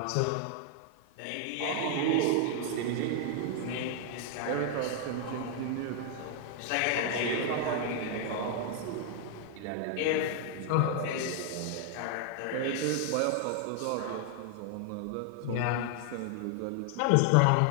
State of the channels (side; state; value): both; different; correlation 0.00